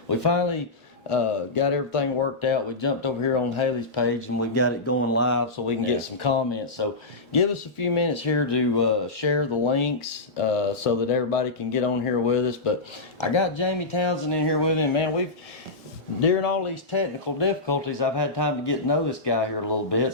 we finally got everything worked out. We jumped over here on Haley's page and we got it going live so we can get some comments. So give us a few minutes here to share the links so that everybody can get on here with us. But I got Jamie Townsend in here with me. Man, during all these technical difficulties, I've had time to get to know this guy here a little bit.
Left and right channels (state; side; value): quieter; right; 3.2 dB